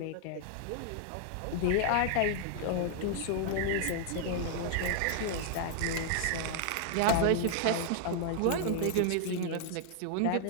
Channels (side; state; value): both; different; correlation 0.00